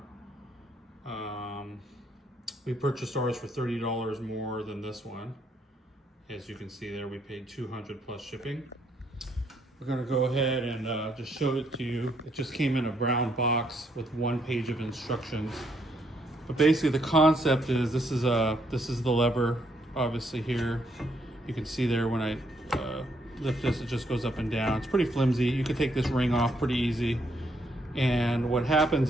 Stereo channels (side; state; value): both; normal; correlation 0.72